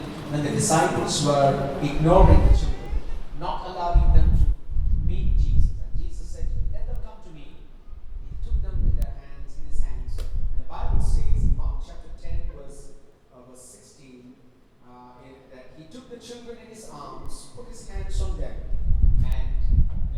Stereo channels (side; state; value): both; identical; correlation 1.00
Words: When the disciples were ignoring the children, not allowing them to meet Jesus, and Jesus said, let them come to me. He took them in his hands. And the Bible says in Mark chapter 10, verse 16, that he took the children in his arms, put his hands on them, and